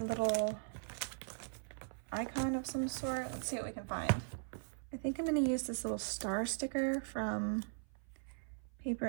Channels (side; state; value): left; silent; 51 dB below the other